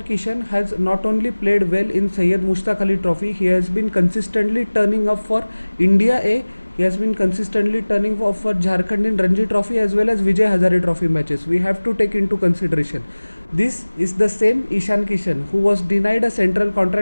Kishan has not only played well in Syed Mushtaq Ali Trophy, he has been consistently turning up for India A. He has been consistently turning up for Jharkhand in Ranji Trophy as well as Vijay Hazare Trophy matches. We have to take into consideration. This is the same Ishan Kishan who was denied a central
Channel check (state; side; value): inverted; both; correlation -1.00